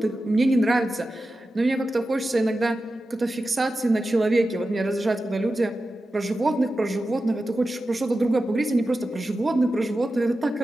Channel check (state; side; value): normal; both; correlation 0.92